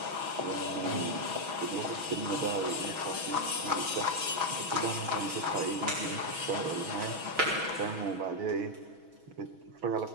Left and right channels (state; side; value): late; left; 6.2 ms